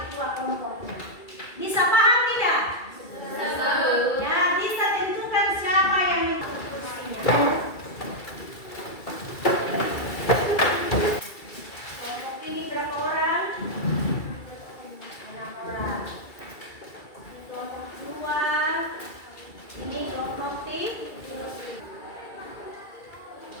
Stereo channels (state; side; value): late; right; 2.3 ms